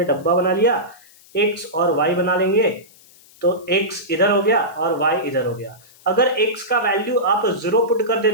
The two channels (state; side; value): noise; left; hiss, 26 dB below the sound